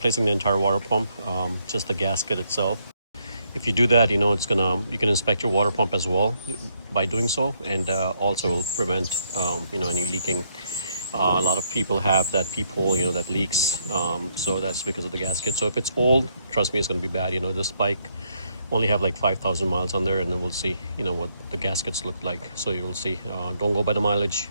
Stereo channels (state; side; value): inverted; both; correlation -0.73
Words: the entire water pump, just the gasket itself. If you do that, you can inspect your water pump as well by doing so, and also will prevent any leaking. A lot of people have that peephole, that leaks. So that's because of the gasket. So if it's old, trust me, it's going to be bad. This bike only have like 5,000 miles on there, and then we'll see, what the gaskets look like. So you'll see. Don't go by the mileage,